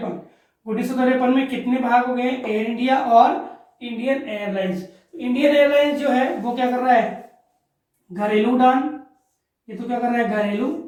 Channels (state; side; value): identical; both; correlation 1.00